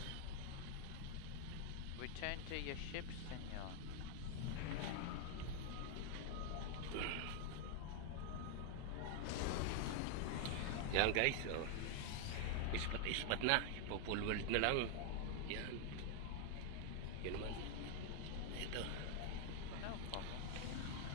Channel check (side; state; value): both; different; correlation 0.00